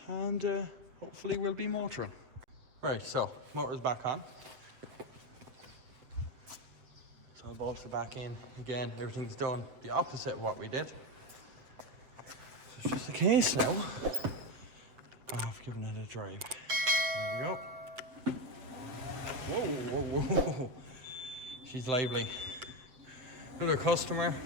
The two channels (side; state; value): left; late; 7.8 ms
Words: and hopefully we'll be motoring. Right, so motor's back on. So I'll bolt it back in. Again, everything's done the opposite of what we did. So it's just the case now. I've given it a drive. There we go. Whoa, whoa, whoa. She's lively. Another customer